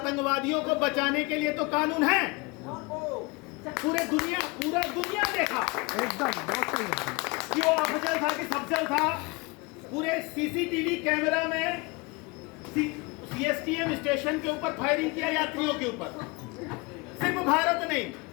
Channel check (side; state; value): right; quieter; 26.5 dB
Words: को बचाने के लिए तो कानून है, पूरा दुनिया देखा एकदम बहुत सही है कि वो अफजल था कि सफजल था, पूरे सीसीटीवी कैमरा में सीएसटीएम स्टेशन के ऊपर फायरिंग किया यात्रियों के ऊपर। सिर्फ भारत नहीं,